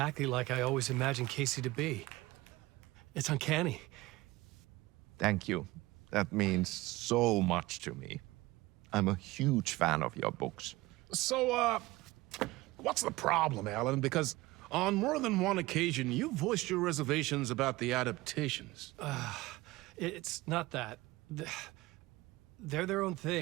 like I always imagined Casey to be. It's uncanny. Thank you. That means so much to me. I'm a huge fan of your books. So, what's the problem, Alan? Because on more than one occasion, you voiced your reservations about the adaptations. It's not that. They're their own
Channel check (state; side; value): quieter; left; 19.9 dB